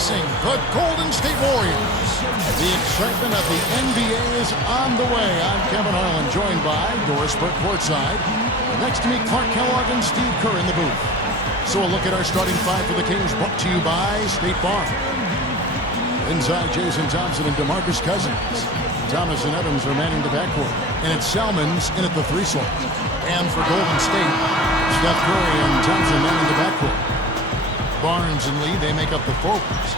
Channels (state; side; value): normal; both; correlation 0.38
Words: the Golden State Warriors. The excitement of the NBA is on the way. I'm Kevin Harlan, joined by Doris Burke courtside. Next to me, Clark Kellogg and Steve Kerr in the booth. So a look at our starting five for the Kings, brought to you by State Farm. Inside, Jason Thompson and DeMarcus Cousins. Thomas and Evans are manning the backcourt. And it's Salmons in at the three slot. And for Golden State, Steph Curry and Thompson manning the backcourt. Barnes and Lee, they make up the forwards.